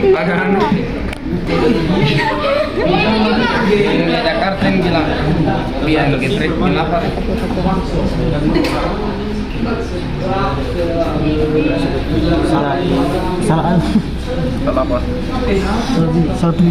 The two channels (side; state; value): both; identical; correlation 1.00